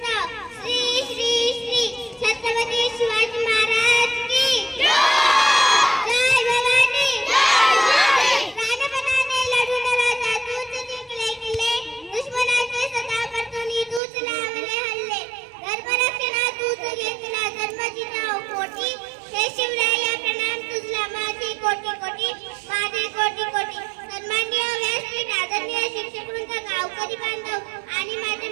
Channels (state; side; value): drops out; left; at 14.0 s